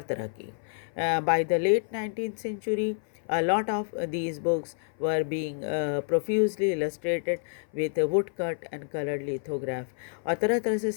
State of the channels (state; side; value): silent; right; 56 dB below the other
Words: तरह की. By the late 19th century, a lot of these books were being profusely illustrated with woodcut and colored lithograph. और तरह तरह से